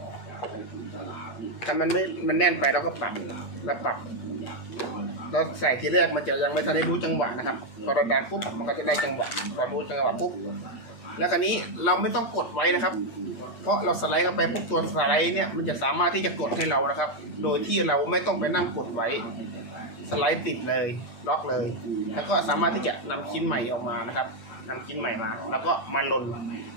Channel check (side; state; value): right; late; 8.6 ms